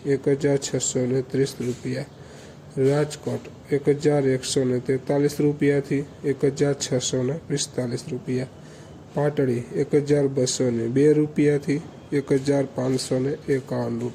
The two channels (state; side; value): identical; both; correlation 1.00